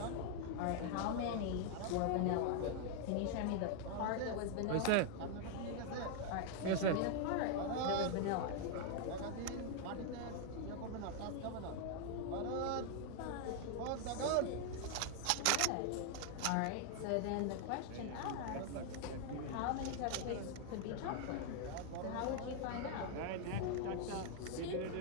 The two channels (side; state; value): both; different; correlation 0.00